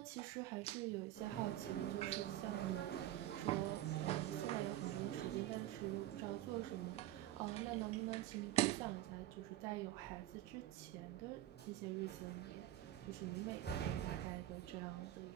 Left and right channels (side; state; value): left; quieter; 13.8 dB